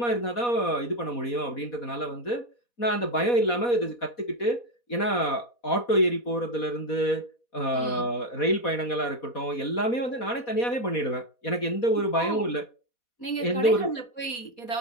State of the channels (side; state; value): right; late; 4.1 ms